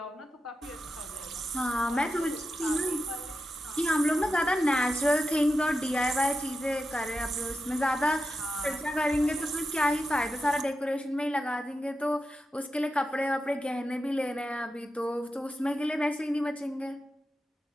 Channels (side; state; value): both; normal; correlation 0.89